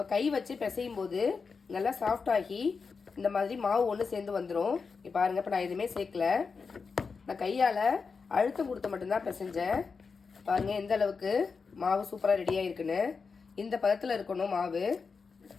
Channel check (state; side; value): quieter; right; 5.1 dB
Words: கை வச்சு பிசையும் போது நல்லா சாஃப்டாகி இந்த மாதிரி மாவு ஒன்று சேர்ந்து வந்துடும். இப்போ பாருங்கள், இப்போ நான் எதுவுமே சேர்க்கல. நான் கையால் அழுத்தம் கொடுத்து மட்டும்தான் பிசைஞ்சேன். பாருங்கள் எந்த அளவுக்கு மாவு சூப்பராக ரெடியாக இருக்குன்னு. இந்த பதத்தில் இருக்கணும் மாவு.